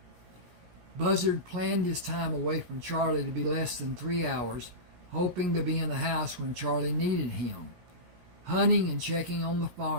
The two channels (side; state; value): left; late; 17 ms